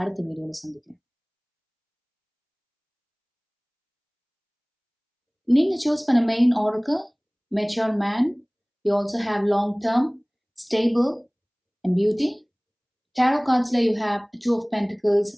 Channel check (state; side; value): identical; both; correlation 1.00